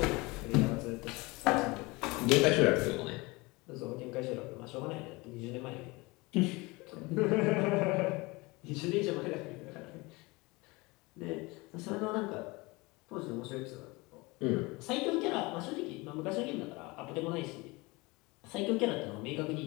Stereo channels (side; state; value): right; quieter; 24.1 dB